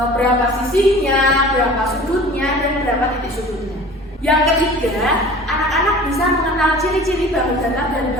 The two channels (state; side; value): normal; both; correlation 0.43